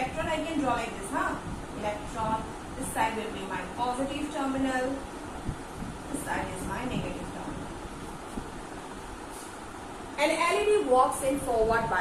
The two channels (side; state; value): both; identical; correlation 1.00